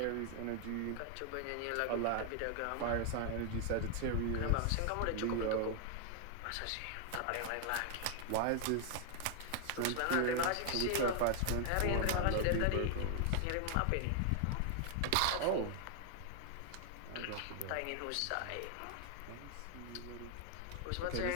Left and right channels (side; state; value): both; different; correlation 0.00